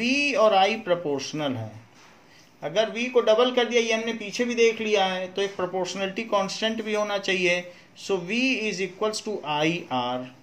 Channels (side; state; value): both; identical; correlation 1.00